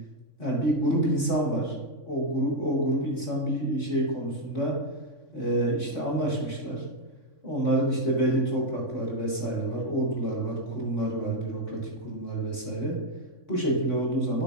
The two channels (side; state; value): right; late; 3.6 ms